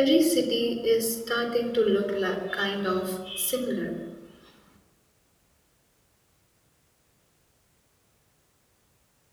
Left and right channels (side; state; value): both; identical; correlation 1.00